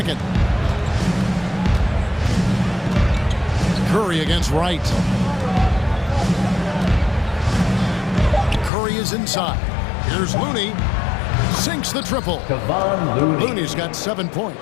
Curry against Wright. Curry is inside. Here's Looney. Sinks the triple. Looney's got 7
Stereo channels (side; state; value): right; drops out; at 8.7 s